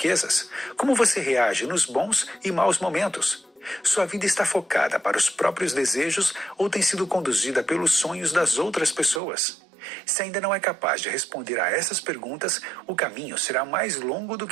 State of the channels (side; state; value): left; drops out; at 9.2 s